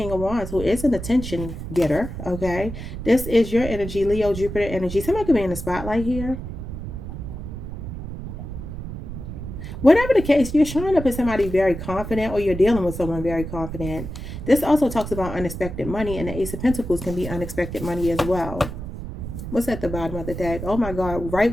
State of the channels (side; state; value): right; noise; rumble, 8 dB below the sound